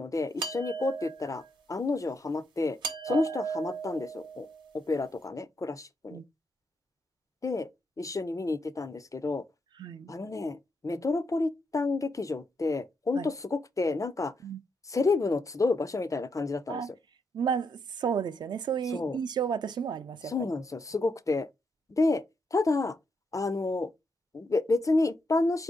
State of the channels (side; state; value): both; normal; correlation 0.80